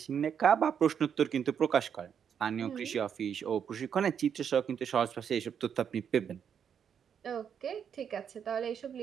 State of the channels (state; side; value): quieter; left; 7.9 dB